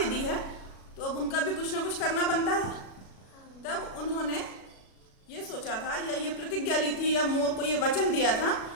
दी है तो अब उनका भी कुछ ना कुछ करना बनता है। तब उन्होंने ये सोचा था, या ये प्रतिज्ञा ली थी, या मोर को ये वचन दिया था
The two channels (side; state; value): right; late; 37 ms